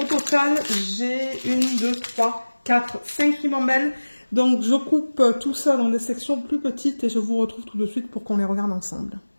total, j'ai 1, 2, 3, 4, 5 ribambelles. Donc je coupe tout ça dans des sections plus petites et je vous retrouve tout de suite pour qu'on les regarde ensemble.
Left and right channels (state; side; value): inverted; both; correlation -1.00